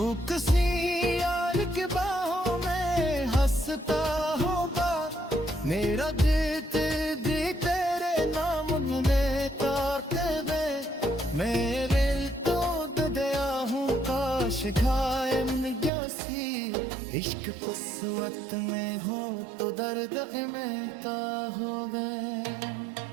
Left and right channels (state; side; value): drops out; left; at 15.9 s